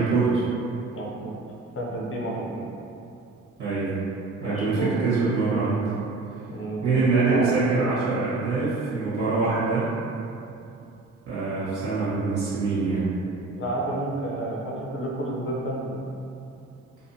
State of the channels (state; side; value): quieter; left; 3.2 dB